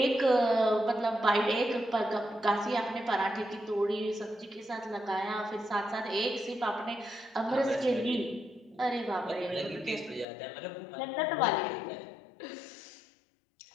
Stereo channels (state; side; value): drops out; right; at 10.2 s